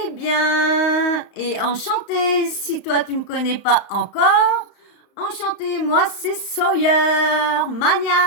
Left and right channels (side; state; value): right; late; 35 ms